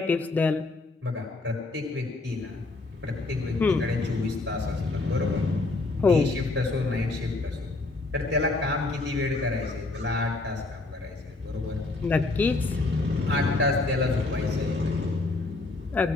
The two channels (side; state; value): right; quieter; 3.2 dB